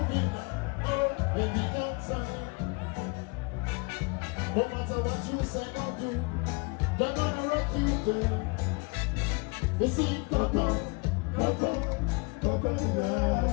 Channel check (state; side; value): quieter; right; 29.9 dB